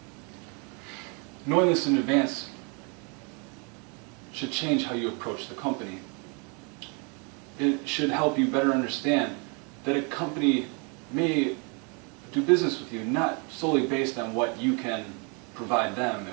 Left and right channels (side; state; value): left; quieter; 34.4 dB